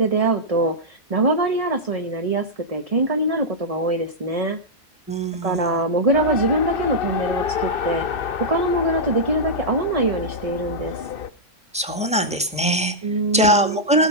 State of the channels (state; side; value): normal; both; correlation -0.08